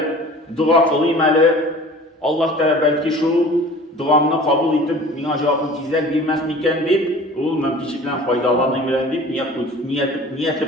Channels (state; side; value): normal; both; correlation 0.43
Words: dua kılıymalı. Allah da belki şu duamını kabul edip, bana cevabını tizler bilmez miken deyip, o mümkünçlikten faydalanımalı deyip,